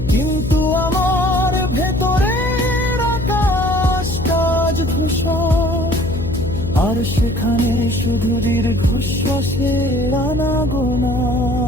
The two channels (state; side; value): noise; left; hum, 6 dB below the sound